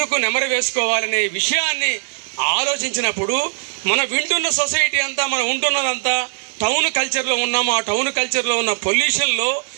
నెమరు వేసుకోవాలనే విషయాన్ని ఆలోచించినప్పుడు మన వింటున్న సొసైటీ అంతా, మనం ఉంటున్నదంతా టౌన్ కల్చర్లో ఉన్నాము. ఆ టౌన్ కల్చర్లో ఉన్న పొల్యూషన్లో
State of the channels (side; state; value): left; silent; digital silence